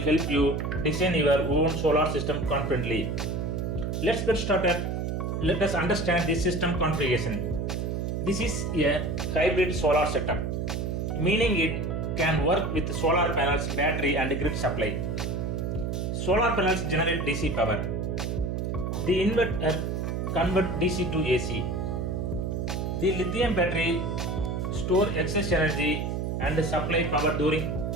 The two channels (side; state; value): right; noise; hum, 2 dB below the sound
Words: help you design your own solar system confidently. Let's get started. Let us understand the system configuration. This is a hybrid solar setup, meaning it can work with solar panels, battery and grid supply. Solar panels generate DC power. The inverter converts DC to AC. The lithium battery store excess energy and supply power during